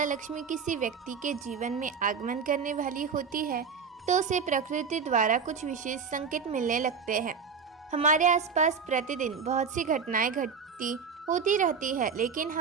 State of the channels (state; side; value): quieter; left; 5.9 dB